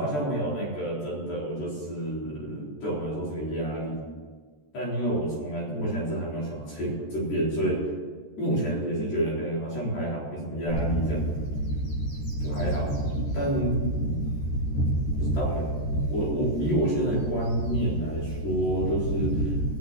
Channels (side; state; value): right; late; 14 ms